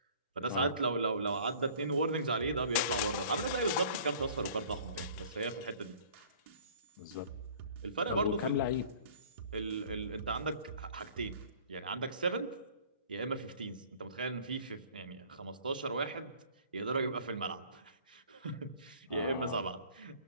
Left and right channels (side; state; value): both; inverted; correlation -0.50